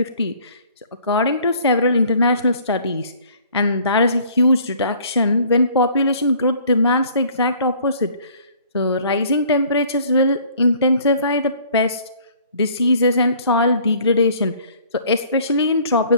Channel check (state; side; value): inverted; both; correlation -0.55